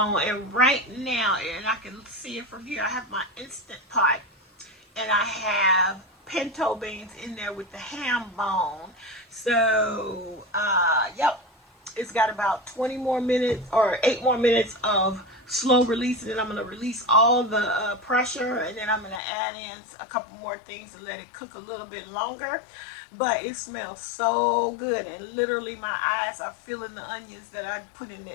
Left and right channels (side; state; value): right; drops out; at 19.2 s